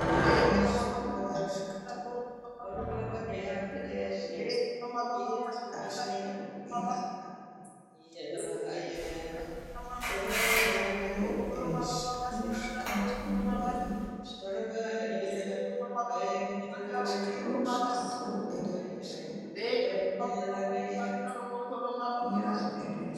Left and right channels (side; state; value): both; identical; correlation 1.00